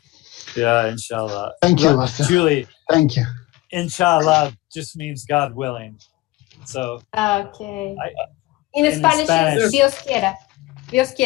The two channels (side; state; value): right; quieter; 19.6 dB